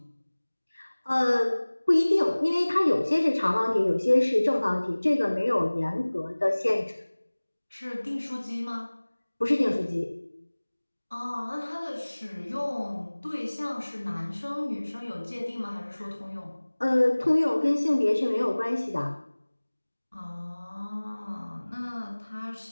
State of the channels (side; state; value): both; inverted; correlation -1.00